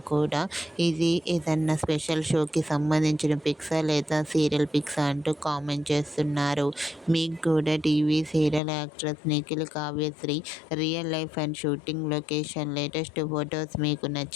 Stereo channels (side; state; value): right; drops out; at 8.6 s